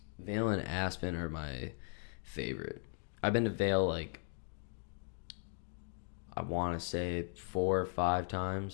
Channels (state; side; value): silent; right; 52 dB below the other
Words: Aspen are my favorite. I've been to Vail like I want to say 4 or 5